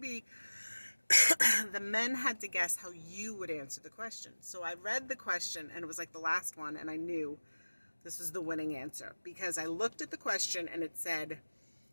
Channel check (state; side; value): inverted; both; correlation -1.00